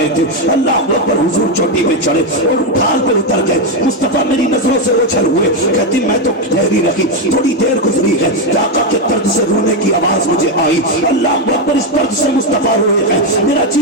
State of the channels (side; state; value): both; normal; correlation 0.06